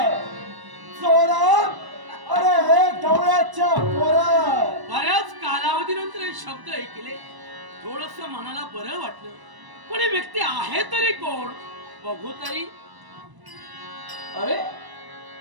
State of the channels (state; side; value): late; left; 1.0 ms